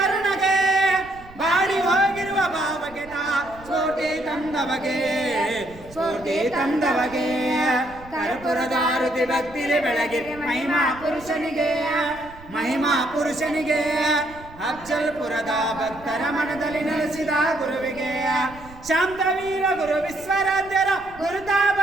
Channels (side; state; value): right; noise; rumble, 20 dB below the sound